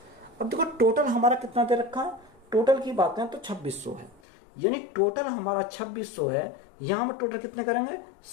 अब देखो टोटल हमारा कितना दे रखा है, टोटल की बात करें तो 2600 है, यानी टोटल हमारा 2600 है। यहाँ हम टोटल कितने करेंगे,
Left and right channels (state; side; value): drops out; right; at 4.2 s